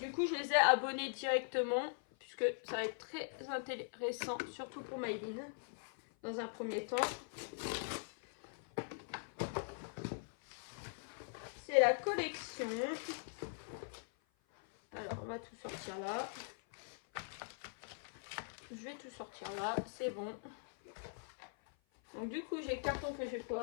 coup je les ai abonnés directement, puisque ça va être très intéressant, surtout pour Maëline, dans un premier temps. C'est la collection. Alors on va tout sortir là. Je vais tout sortir là, c'est bon. Donc du coup j'ai le carton que je vais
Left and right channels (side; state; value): right; silent; 50 dB below the other